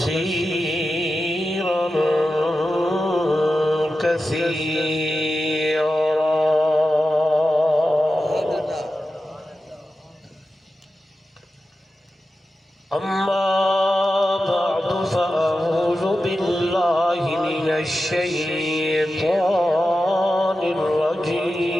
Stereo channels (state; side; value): normal; both; correlation 0.92